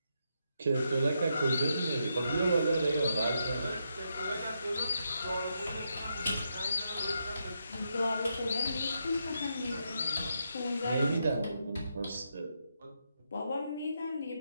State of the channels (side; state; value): both; inverted; correlation -0.81